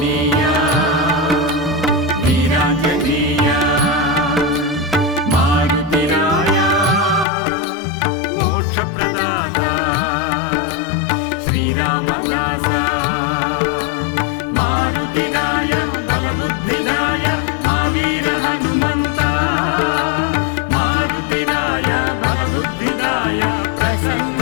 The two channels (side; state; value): right; drops out; at 7.2 s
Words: వీరాంజనేయ మారుతిరాయ మోక్షప్రదాత శ్రీరామదాస మారుతిరాయ బలబుద్ధిదాయ మావీర హనుమంత మారుతిరాయ బలబుద్ధిదాయ